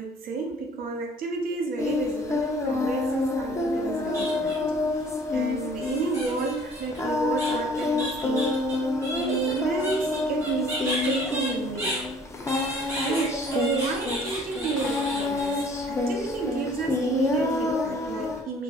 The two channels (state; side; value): normal; both; correlation 0.54